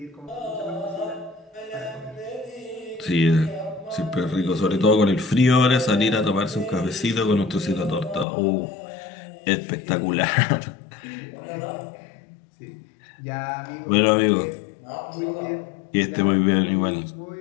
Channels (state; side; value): drops out; right; at 8.2 s